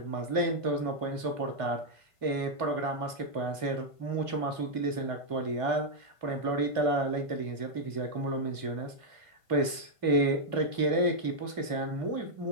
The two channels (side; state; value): left; late; 2.3 ms